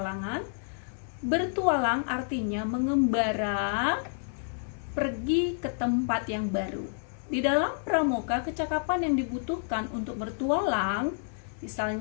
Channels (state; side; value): silent; right; 58 dB below the other